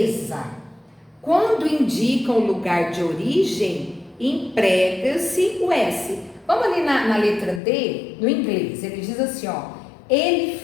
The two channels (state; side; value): drops out; right; at 7.6 s